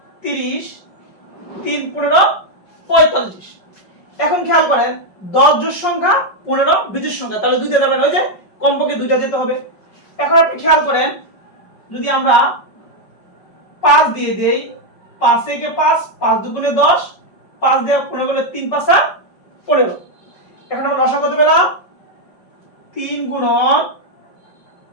30, 3 15 45। এখন খেয়াল করেন 10 জোড় সংখ্যা, 15 বিজোড় সংখ্যা, তাহলে 2 দিয়ে যাবেন, ওই যে কমপক্ষে 2টা যেতে হবে। এখন আপনি খেয়াল করেন, যদি আমরা 5 দিয়ে দেই, 5 থেকে 5, 5 দুগুণে 10, 5 দিয়ে 15 করলে 3 5 15। এখন আমরা লসাগু কত পেলাম? 3 গুণন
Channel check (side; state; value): right; late; 5.3 ms